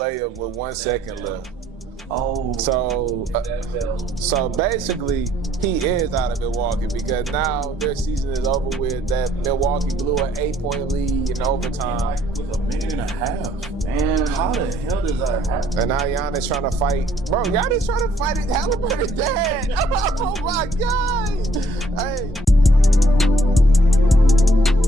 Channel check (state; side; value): normal; both; correlation 0.64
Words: with 1 second left. Oh. So basically, he is out of Milwaukee because now their season is over with. That Milwaukee blew an 8-point lead in overtime. With a minute and a half. Man. How the hell does that happen? And now Giannis trying to fight. Bro, Giannis trying to fight Halliburton's dad. Oh my God. Hey.